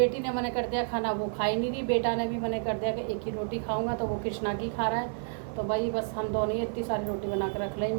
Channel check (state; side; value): silent; left; 58 dB below the other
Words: ने मना कर दिया खाना, वो खा ही नहीं रही। बेटा ने भी मना कर दिया कि एक ही रोटी खाऊंगा, तो वो कृष्णा की खा रहा है। तो भाई बस हम दोनों ही इतनी सारी रोटी बना कर रख ली।